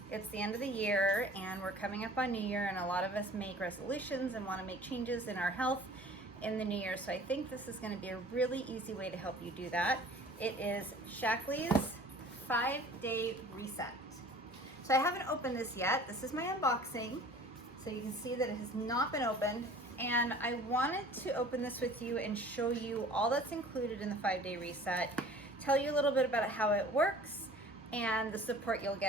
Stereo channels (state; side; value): normal; both; correlation 0.47